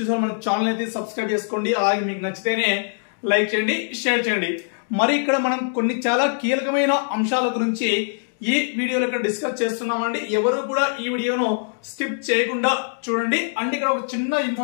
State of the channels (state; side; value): silent; right; 64 dB below the other